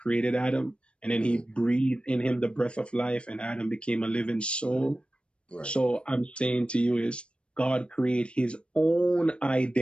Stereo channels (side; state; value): right; late; 0.057 ms